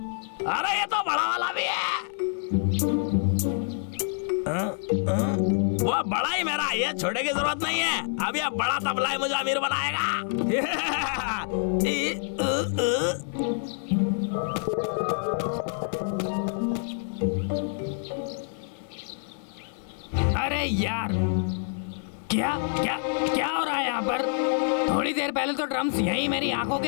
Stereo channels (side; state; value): right; silent; 60 dB below the other